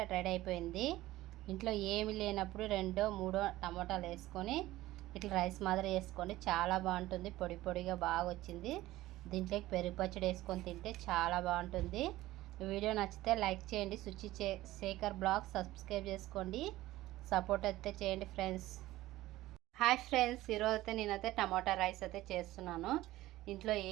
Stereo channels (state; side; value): quieter; left; 16.6 dB